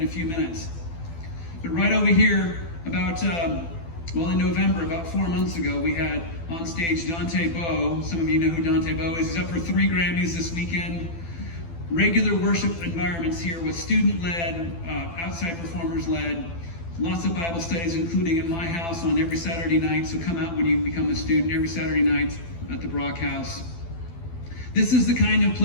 a few minutes. But right over here, in November, about 4 months ago, we had on stage Dante Bowe. Some of you know who Dante Bowe is. He's up for 3 Grammys this weekend. Regular worship environments here with student-led, outside performers-led, lots of Bible studies, including in my house on every Saturday night. So come out when you become a student every Saturday night at the Brock House. This is the kind of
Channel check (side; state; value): right; late; 12 ms